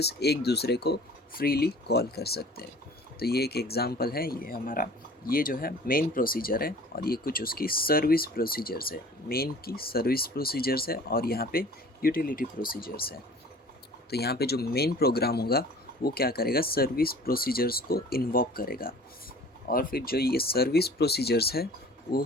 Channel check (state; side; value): normal; both; correlation 0.47